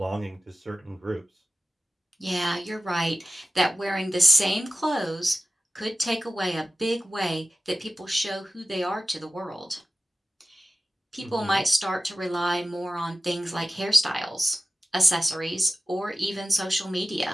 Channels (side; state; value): both; normal; correlation 0.95